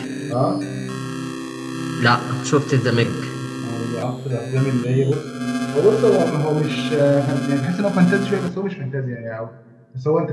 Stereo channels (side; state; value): both; identical; correlation 1.00